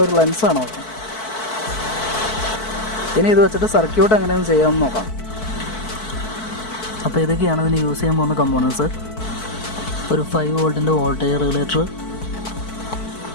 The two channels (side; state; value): right; late; 4.6 ms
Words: ഒരു ലെൻസാണ്. ഇനി ഇത് വെച്ചിട്ട് സർക്യൂട്ട് എങ്ങനെയൊന്നും ചെയ്യാമെന്ന് നോക്കാം. അപ്പോൾ ഇതൊക്കെയാണ് ഇതിന് യൂസ് ചെയ്യാൻ പോകുന്ന കമ്പോണൻസ്. ഒരു 5 വോൾട്ടിൻ്റെ വോൾട്ടേജ് റെഗുലേറ്റർ,